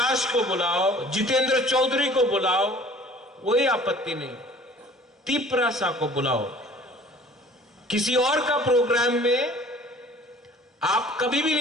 को बुलाओ, जितेंद्र चौधरी को बुलाओ, कोई आपत्ति नहीं। तिपरासा को बुलाओ। किसी और का प्रोग्राम में आप कभी भी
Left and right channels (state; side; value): normal; both; correlation 0.49